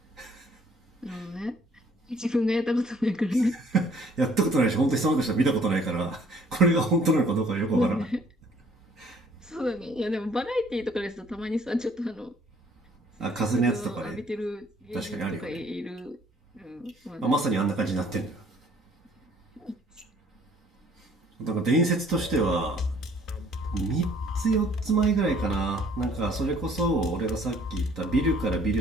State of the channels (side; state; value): both; normal; correlation 0.59